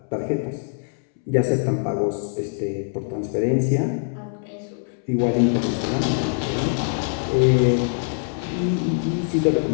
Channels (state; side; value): silent; right; 63 dB below the other